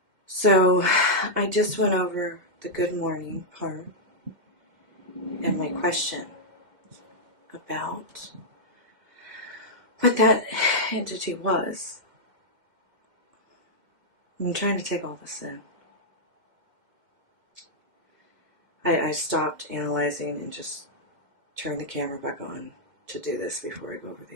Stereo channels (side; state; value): left; late; 2.2 ms